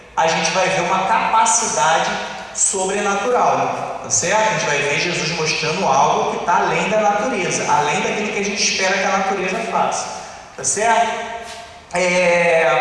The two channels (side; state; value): both; identical; correlation 1.00